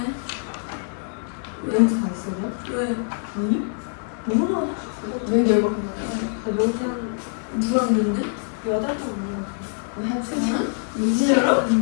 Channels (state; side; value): silent; right; 56 dB below the other